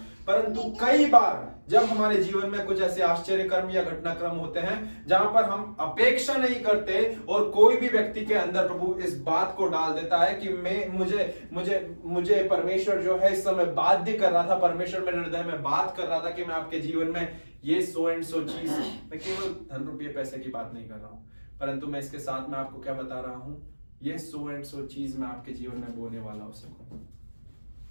परंतु कई बार जब हमारे जीवन में कुछ ऐसे आश्चर्य कर्म या घटनाक्रम होते हैं जहां पर हम अपेक्षा नहीं करते और कोई भी व्यक्ति के अंदर प्रभु इस बात को डाल देता है कि मुझे परमेश्वर जो है इस समय बाध्य कर रहा था, परमेश्वर मेरे हृदय में बात कर रहा था कि मैं आपके जीवन में ये सो एंड सो चीज, मैं केवल धन रुपये पैसे की बात नहीं कर रहा हूं, परंतु मैं इसके साथ में आपको क्या बता रहा हूं, ये सो एंड सो चीज मैं आपके जीवन में बोने वाला हो सकूं,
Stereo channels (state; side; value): inverted; both; correlation -1.00